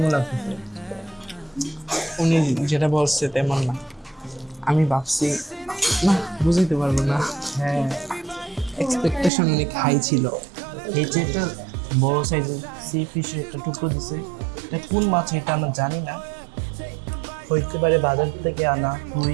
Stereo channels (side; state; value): left; drops out; at 9.3 s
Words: লাগতেছে? উনি যেটা বলছে তেমন না, আমি ভাবছি না, বুঝাইতে পারবো না। হ্যাঁ, এক্সপেকটেশন অনেক হাই ছিল। এই যে একটা বড় সাইজের সি ফিশের একটা টুকরো দিছে, এটা কোন মাছ এটা আমরা জানি না, হইতে পারে বাজার থেকে আনা